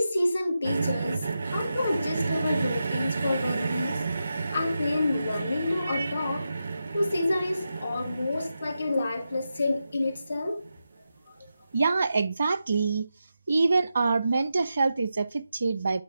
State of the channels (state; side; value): inverted; both; correlation -0.89